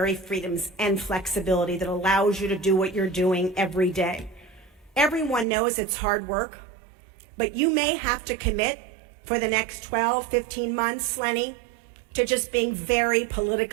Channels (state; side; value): drops out; left; at 5.5 s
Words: freedoms and flexibility that allows you to do what you're doing every day. Everyone knows it's hard work, but you may have to commit for the next 12, 15 months, Lenny, to just being very